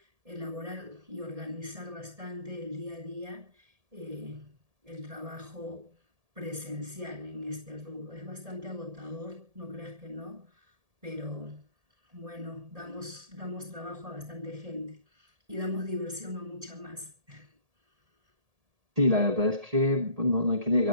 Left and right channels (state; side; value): late; left; 1.7 ms